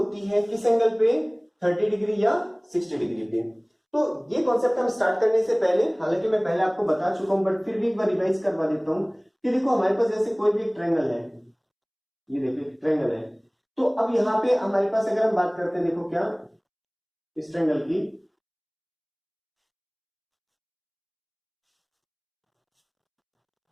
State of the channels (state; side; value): identical; both; correlation 1.00